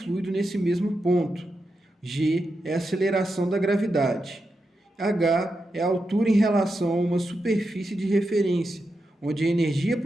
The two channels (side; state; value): both; normal; correlation 0.87